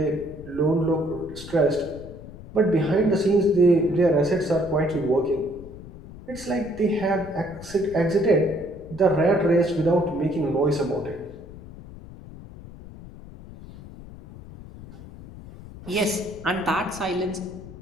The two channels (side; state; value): left; noise; rumble, 16 dB below the sound